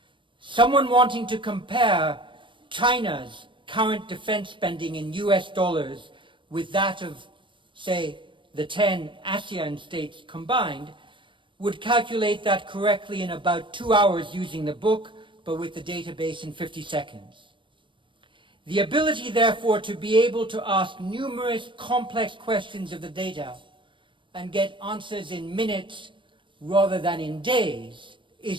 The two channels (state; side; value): late; left; 0.24 ms